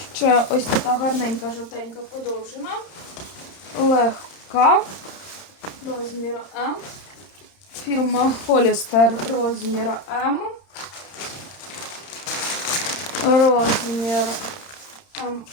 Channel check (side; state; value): right; late; 30 ms